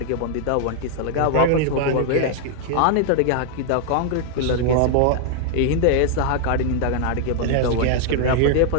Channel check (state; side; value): different; both; correlation 0.00